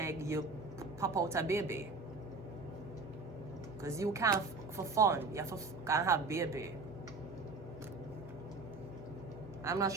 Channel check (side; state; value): left; quieter; 3.8 dB